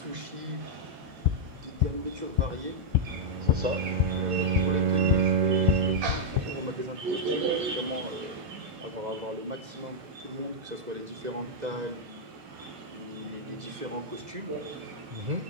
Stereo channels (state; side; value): late; left; 2.0 ms